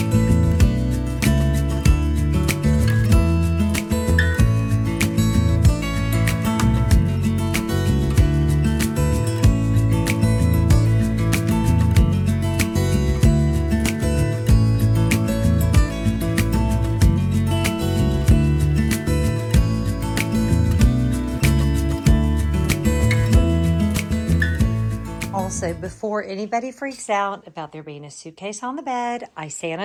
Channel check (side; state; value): both; identical; correlation 1.00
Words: Also, before anybody freaks out about there being a suitcase on the bed, I